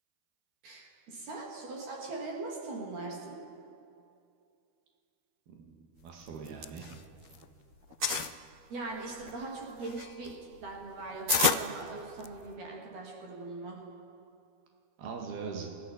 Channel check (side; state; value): left; late; 12 ms